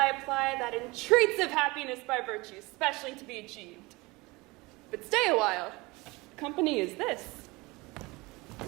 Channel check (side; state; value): left; quieter; 23.5 dB